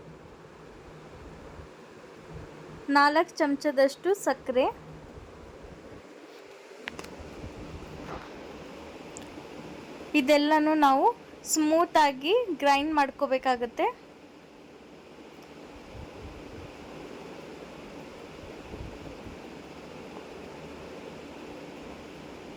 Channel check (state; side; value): identical; both; correlation 1.00